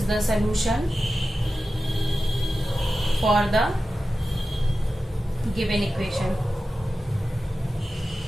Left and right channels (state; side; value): normal; both; correlation 0.94